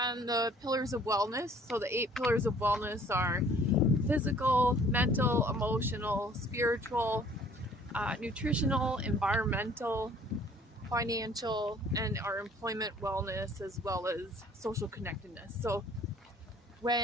the pillars of wellness. So the 8 pillars of wellness are physical, mental, emotional, spiritual, nutritional, environmental, financial, and our employment wellness, as well as social connectedness. So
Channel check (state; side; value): normal; both; correlation 0.55